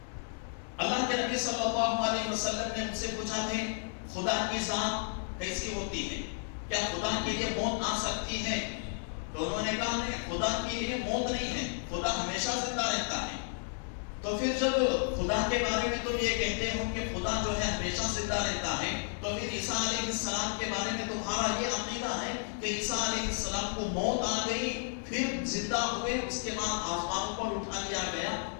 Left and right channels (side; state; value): right; silent; digital silence